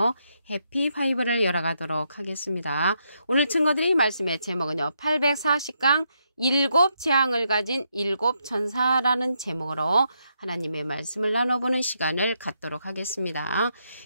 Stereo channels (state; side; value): inverted; both; correlation -0.79